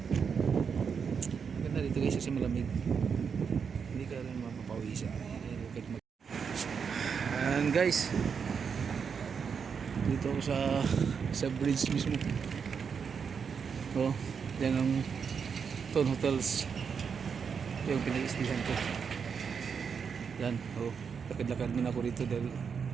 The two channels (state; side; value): quieter; left; 6.4 dB